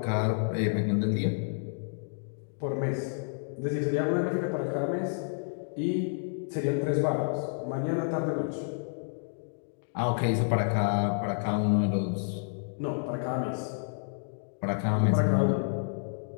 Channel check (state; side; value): silent; right; digital silence